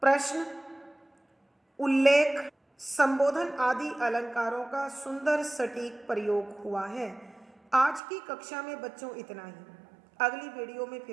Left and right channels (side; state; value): left; drops out; at 8.0 s